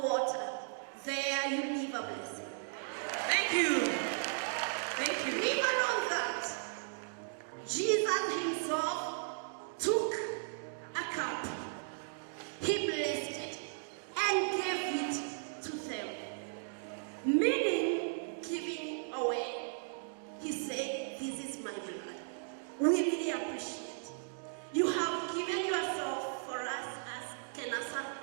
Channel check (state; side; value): silent; left; digital silence